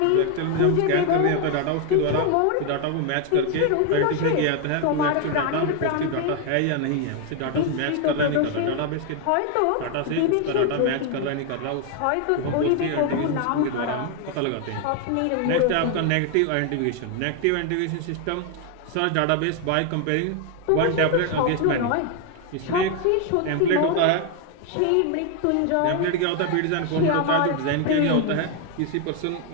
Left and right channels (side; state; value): both; different; correlation 0.01